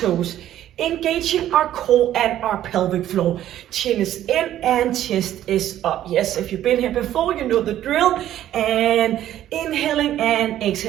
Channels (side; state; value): left; quieter; 12.3 dB